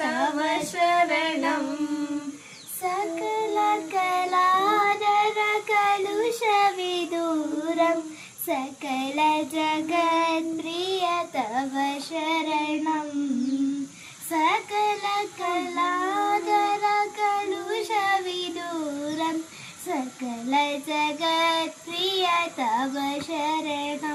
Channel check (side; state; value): both; identical; correlation 1.00